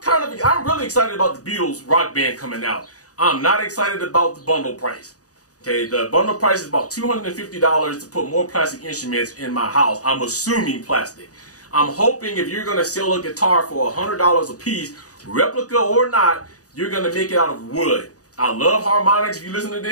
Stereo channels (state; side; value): late; right; 0.67 ms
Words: really excited about the Beatles Rock Band coming out. I'm not excited about the bundle price. Okay, the bundle price is about $250 to put more plastic instruments in my house. I'm assuming plastic. I'm hoping if you're going to sell a guitar for $100 a piece, replica or not, you're going to make it out of wood. I love harmonics. If you listen to